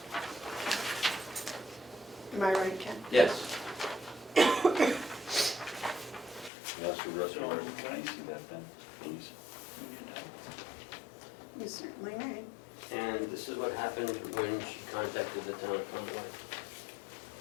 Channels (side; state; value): right; drops out; at 6.5 s